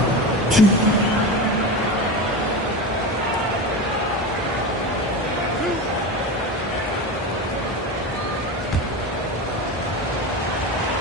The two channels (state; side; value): normal; both; correlation 0.24